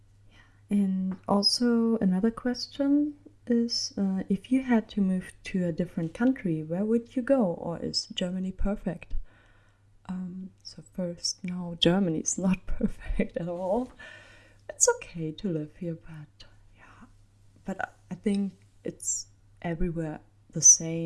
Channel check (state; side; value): identical; both; correlation 1.00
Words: And also another question is, if you had to move to a different country, where would you go? Or is Germany perfect? So first, no, Germany is not perfect at all. It's okay to live here, but yeah. But I think it's everywhere the